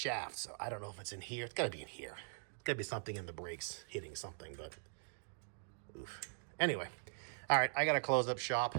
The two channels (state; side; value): silent; left; digital silence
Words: so I don't know if it's in here. It's got to be in here. It's got to be something in the brakes hitting something, but oof. Anyway, all right, I got to close up shop